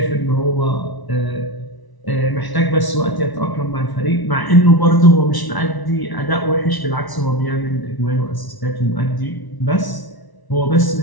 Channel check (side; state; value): right; late; 1.0 ms